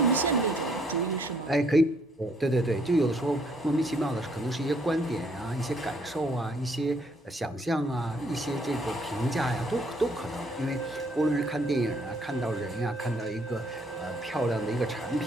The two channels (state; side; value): normal; both; correlation 0.66